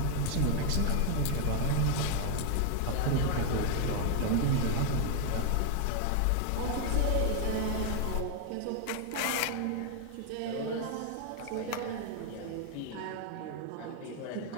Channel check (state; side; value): different; both; correlation 0.00